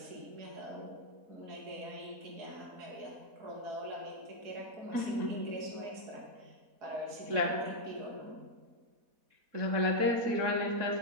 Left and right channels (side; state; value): left; late; 4.1 ms